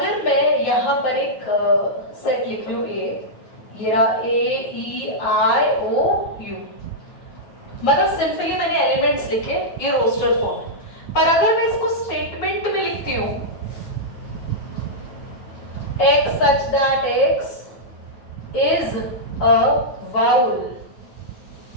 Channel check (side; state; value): right; late; 9.3 ms